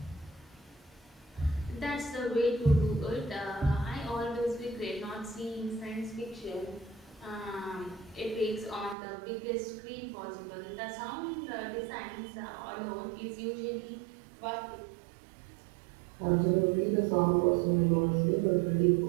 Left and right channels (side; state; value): left; drops out; at 9.0 s